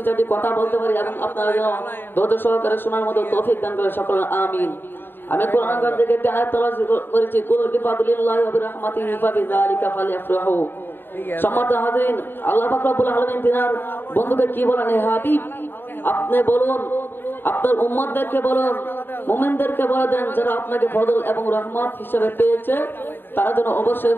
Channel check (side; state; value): right; late; 0.098 ms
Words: চারটি কথা বলতে পারি এবং আপনারা যেন ধৈর্য সহকারে শোনার মতো তৌফিক দান করে সকলে আমিন। আমি কোরআন কারীম থেকে একটি আয়াত তেলাওয়াত করেছি, কুল বিফাদলিল্লাহি ওয়া বিরহমাতিহি ফাবিযালিকা ফালইফরাহু। সম্মানিত হাজিরিন, আল্লাহ পাক রব্বুল আলামিন তিনার বন্ধুকে কি বলেন, হে হাবিব আপনি বলুন, আপনার উম্মতদেরকে বলুন, মুমিনদেরকে বলে দেন যারা আপনাকে ফজল এবং রহমত হিসেবে পেয়েছে তারা যেন অবশ্যই